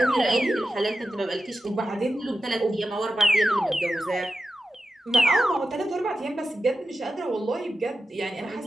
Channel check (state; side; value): normal; both; correlation 0.92